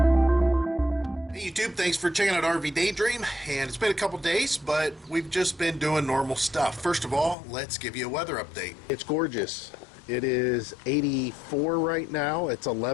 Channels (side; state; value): right; drops out; at 7.4 s